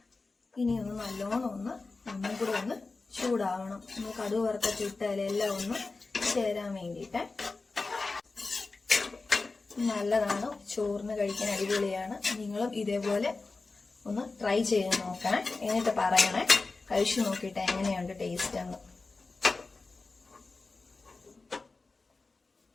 ഇനി ഒന്ന് നല്ലോണം ഒന്നും കൂടെ ഒന്ന് ചൂടാവണം. ഒന്ന് കടുക് വറുത്തൊക്കെ ഇട്ടാൽ എല്ലാം ഒന്ന് ചേരാൻ വേണ്ടിയിട്ട് നല്ലതാണ്. ചോറിന് കഴിക്കാൻ അടിപൊളിയാണ്. നിങ്ങളും ഇതേപോലെ ഒന്ന് ട്രൈ ചെയ്ത് നോക്കണേ. എന്നിട്ട് പറയണേ കഴിച്ചു നോക്കിയിട്ട് എങ്ങനെയുണ്ട് ടേസ്റ്റ് എന്ന്.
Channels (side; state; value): right; quieter; 3.8 dB